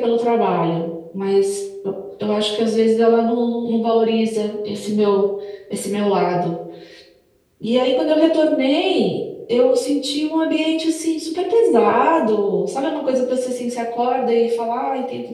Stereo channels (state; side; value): identical; both; correlation 1.00